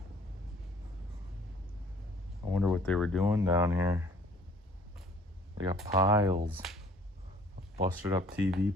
I wonder what they were doing down here. They got piles of busted up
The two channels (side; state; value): both; normal; correlation 0.55